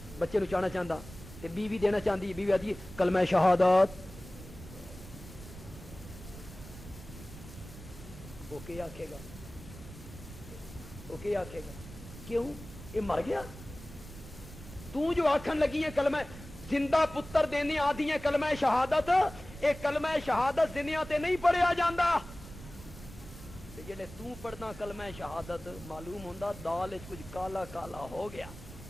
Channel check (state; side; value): noise; right; rumble, 15 dB below the sound